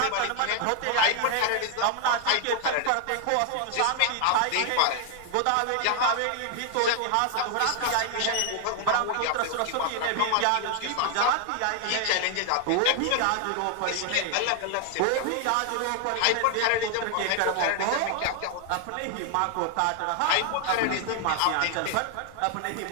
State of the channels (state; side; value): different; both; correlation 0.00